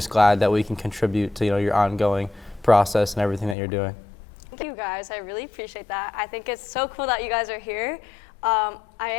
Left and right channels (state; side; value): drops out; right; at 3.6 s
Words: glad that we can contribute to your ongoing process and everything that you're doing. Thank you, guys. I really appreciate that. I think it's so cool that you guys are here. I